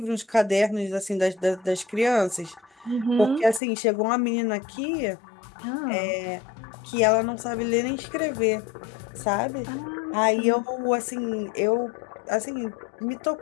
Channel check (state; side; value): drops out; right; at 3.6 s